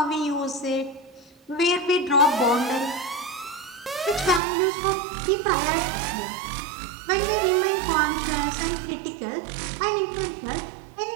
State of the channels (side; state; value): left; drops out; at 4.4 s